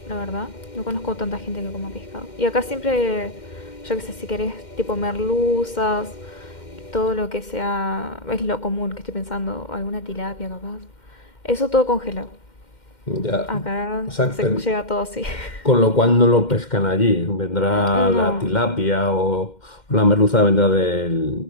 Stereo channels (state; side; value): late; right; 2.1 ms